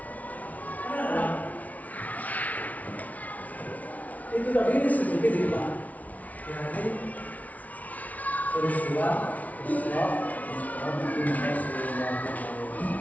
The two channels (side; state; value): right; late; 0.071 ms